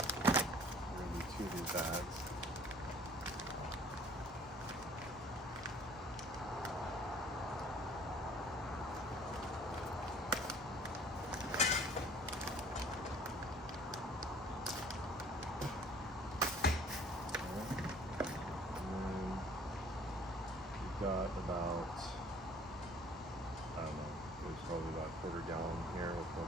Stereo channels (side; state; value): both; normal; correlation 0.53